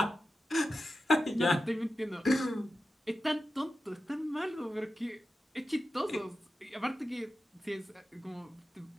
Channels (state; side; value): normal; both; correlation 0.92